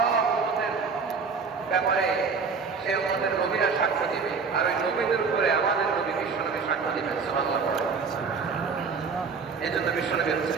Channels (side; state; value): left; quieter; 5.1 dB